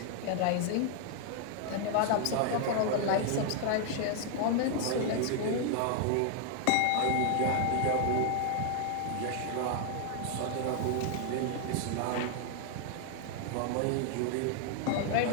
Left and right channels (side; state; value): both; different; correlation 0.00